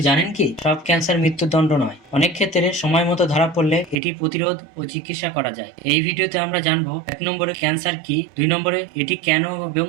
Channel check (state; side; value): drops out; left; at 4.0 s